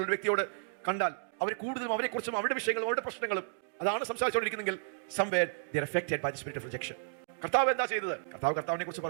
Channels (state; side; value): silent; left; digital silence